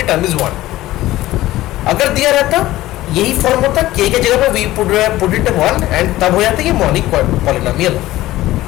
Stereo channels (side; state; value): right; quieter; 16.2 dB